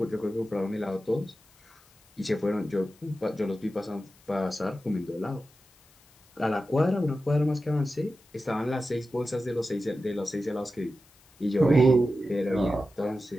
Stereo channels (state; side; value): noise; left; hiss, 29 dB below the sound